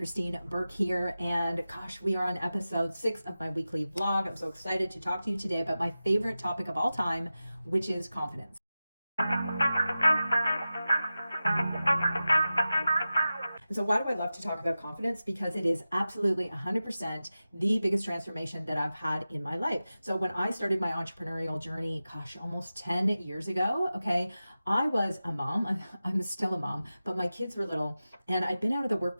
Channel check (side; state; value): both; inverted; correlation -0.94